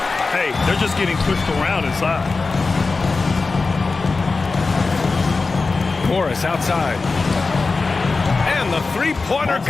Hey, they're just getting pushed around inside. Morris outside. And the three-pointer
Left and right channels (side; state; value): right; quieter; 4.0 dB